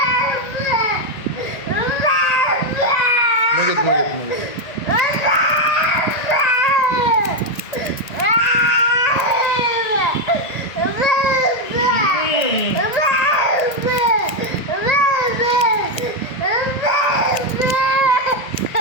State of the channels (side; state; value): right; late; 1.8 ms